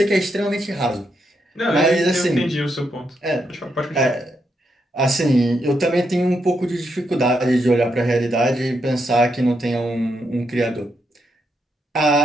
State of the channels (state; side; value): normal; both; correlation 0.80